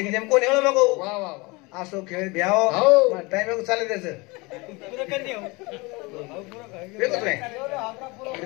जेम कोणी हळू नको असो खेळ भ्याव टाइम चालत त्याचं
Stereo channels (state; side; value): quieter; right; 25.2 dB